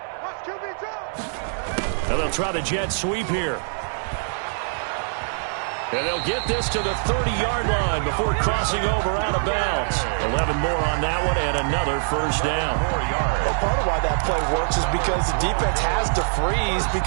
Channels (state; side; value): silent; left; digital silence